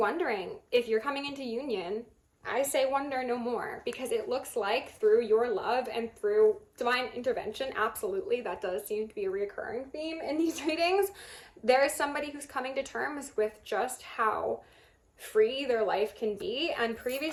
if you're coming into union, I say wonder no more, because it looks like through your love and through divine intervention, absolutely, that does seem to be a recurring theme in these readings. There is somebody who's coming to terms with just how free their life can be, and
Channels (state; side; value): identical; both; correlation 1.00